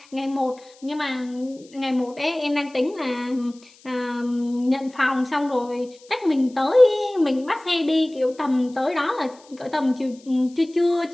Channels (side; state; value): left; noise; hiss, 27 dB below the sound